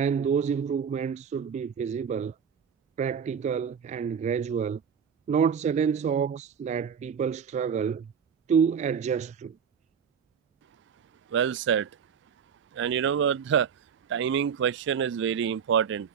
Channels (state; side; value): quieter; left; 7.1 dB